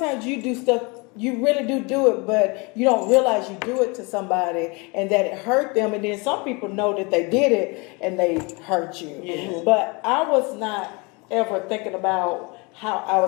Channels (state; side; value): quieter; right; 28.7 dB